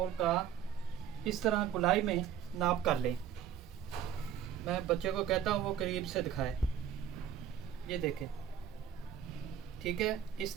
का इस तरह गुलाई में नाप कर लें। मैं बच्चे को कहता हूँ वो करीब से दिखाए। ये देखें, ठीक है, इस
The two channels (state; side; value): quieter; left; 9.5 dB